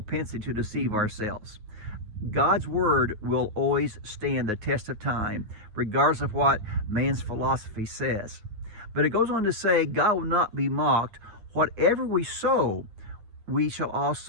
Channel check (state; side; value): late; left; 9.5 ms